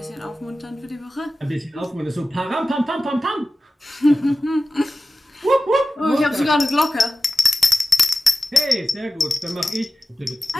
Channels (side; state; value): both; normal; correlation 0.94